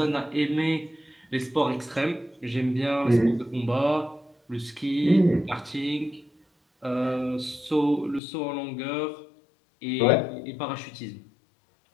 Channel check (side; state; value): right; drops out; at 8.2 s